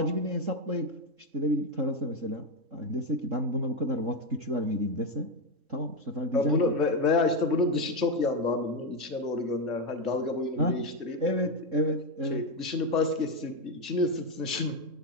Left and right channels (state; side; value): late; left; 3.4 ms